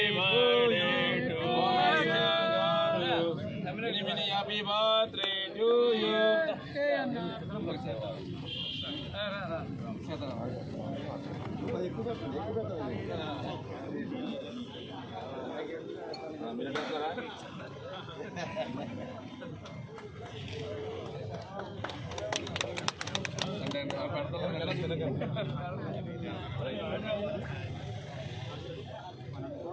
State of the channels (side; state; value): both; identical; correlation 1.00